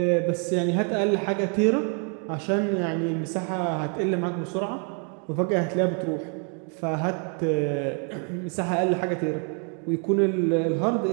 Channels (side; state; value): left; quieter; 38.9 dB